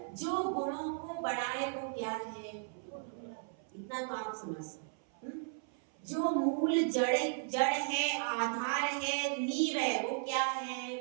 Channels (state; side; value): silent; left; 54 dB below the other